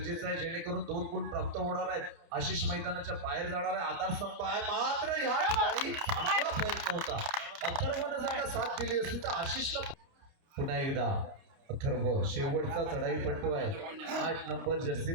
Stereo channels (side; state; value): left; late; 30 ms